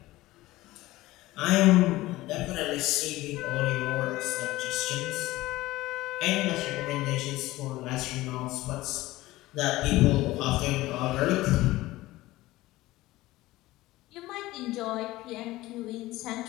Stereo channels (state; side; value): quieter; right; 17.9 dB